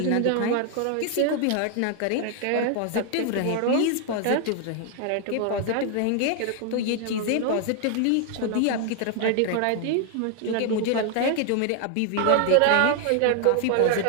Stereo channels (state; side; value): different; both; correlation 0.00